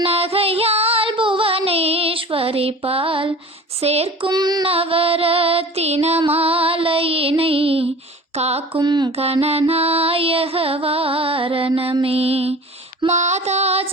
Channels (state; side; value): normal; both; correlation 0.41